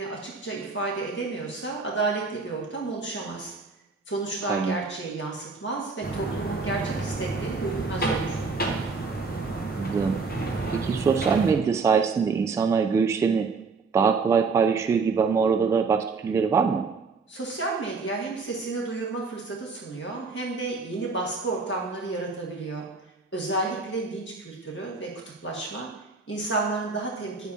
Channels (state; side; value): quieter; left; 4.5 dB